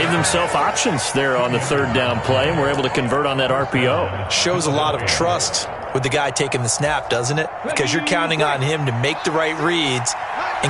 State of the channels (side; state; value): both; identical; correlation 1.00